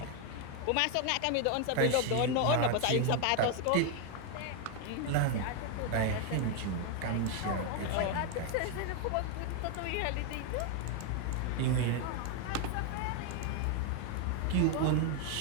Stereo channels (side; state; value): both; different; correlation 0.01